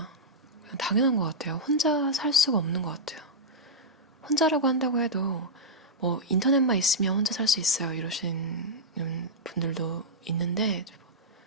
그냥 당연한 것 같아요. 혼자 살 수가 없는 것 같아요. 혼자라고 한다고 해도 뭐 인터넷만 있으면 혼자 살 수 있어요 이러시는 분들도 있는데,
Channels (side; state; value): both; normal; correlation -0.09